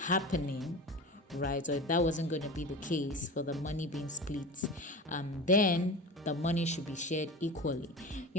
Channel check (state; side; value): normal; both; correlation 0.31